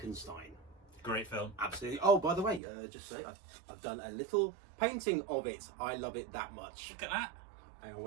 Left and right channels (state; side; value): drops out; left; at 2.6 s